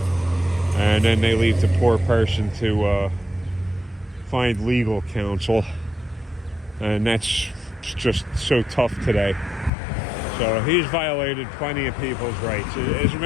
and then they leave the poor person to find legal counsel, and that's just so tough today. So he's violated plenty of people's rights. As a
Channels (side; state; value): right; drops out; at 9.7 s